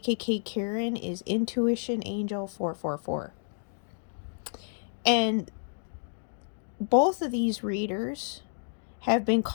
Karen is Intuition Angel 444. And both of these readers have been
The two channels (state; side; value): silent; right; digital silence